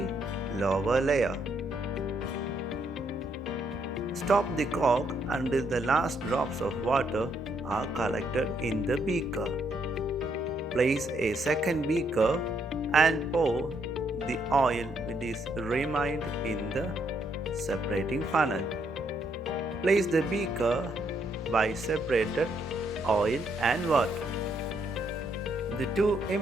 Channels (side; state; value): both; normal; correlation 0.74